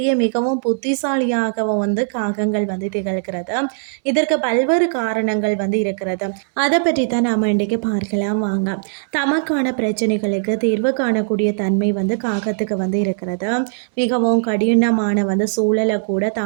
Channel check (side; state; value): left; silent; 65 dB below the other